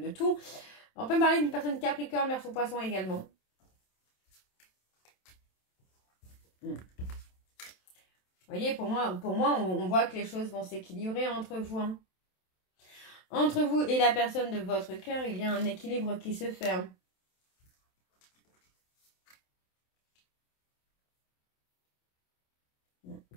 tout. On peut me parler d'une personne Capricorne, Verseau, Poisson également. Vous voyez, pour moi on voit que les choses vont s'équilibrer entre vous. Hein. Entre vous et la personne de votre cœur, il y a un équilibre qui se fait. Hein.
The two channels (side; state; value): right; late; 27 ms